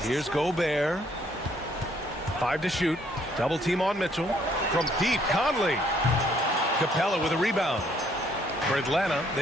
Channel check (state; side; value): normal; both; correlation 0.66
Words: Here's Gobert. 5 to shoot. Double team on Mitchell. From deep, Conley. Capella with a rebound. For Atlanta,